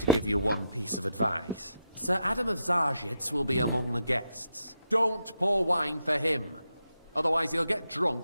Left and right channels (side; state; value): both; inverted; correlation -0.82